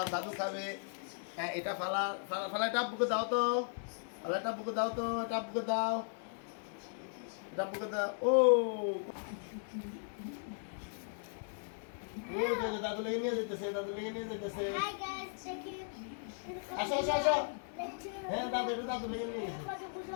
দাদু খাবে। হ্যাঁ, এটা ফালা ফালা ফালা এটা আব্বুকে দাও তো। ফালা এটা আব্বুকে দাও তো, এটা আব্বুকে দাও। এটা আব্বুকে দাও। ও ও দাদু লেগে নিয়ে যেতেছে, দাদু লেগে নিয়ে যেতেছে। Hi guys, check it. আসো আসো আসো। হ্যাঁ দাদু, এটা দাদু লেগে নিয়ে গেছে।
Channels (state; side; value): silent; right; digital silence